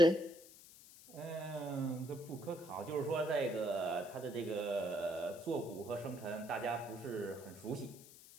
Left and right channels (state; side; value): noise; left; hiss, 19 dB below the sound